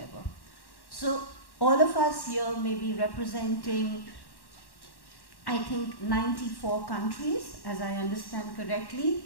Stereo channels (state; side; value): late; right; 1.1 ms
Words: So all of us here may be representing, I think, 94 countries, as I understand correctly,